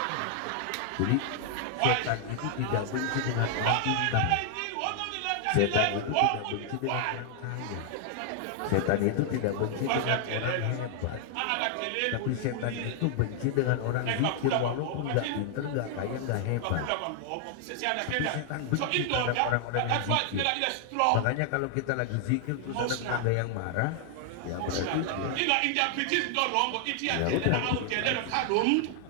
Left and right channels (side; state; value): both; different; correlation 0.00